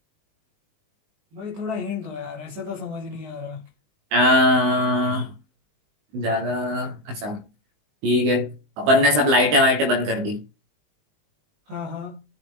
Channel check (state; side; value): late; left; 20 ms